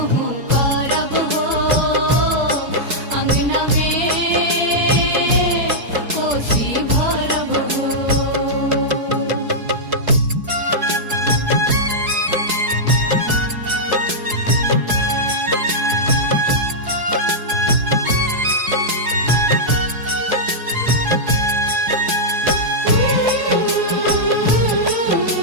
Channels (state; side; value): late; left; 4.7 ms